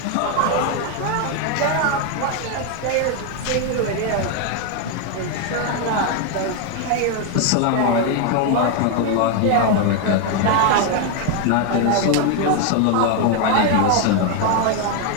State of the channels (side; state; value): both; different; correlation 0.01